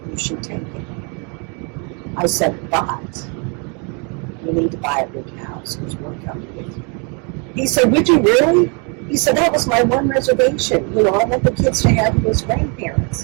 you should take it. I said, but you need to buy a big house because we're coming with you. He said, would you really? He said, that was my one reservation. I want the kids to have you as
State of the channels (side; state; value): left; quieter; 35.0 dB